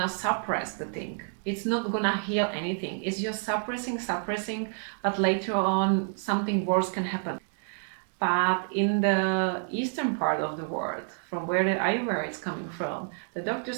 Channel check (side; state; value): left; silent; 57 dB below the other